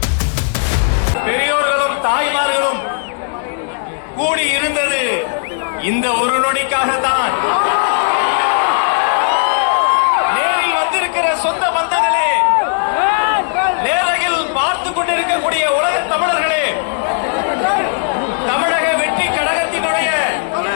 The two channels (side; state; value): right; silent; digital silence